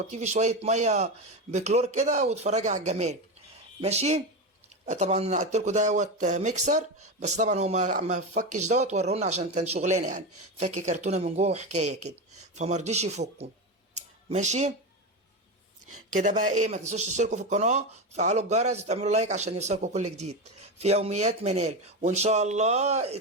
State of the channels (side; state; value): both; normal; correlation 0.17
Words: في شويه ميه بكلور كده وتفرجي على الجمال. ماشي. طبعا انا قلت لكم دوت ميكسر، بس طبعا هو ما فكش دوت، ورونا عشان كان شغلانه يعني، فك كرتونه من جوه وحكايه كده، فما رضيش يفكوا. ماشي. كده بقى ايه، ما تنسوش تشتركوا في القناه، تفعلوا الجرس وتعملوا لايك عشان يوصلكوا كل جديد في يوميات منال، وان شاء الله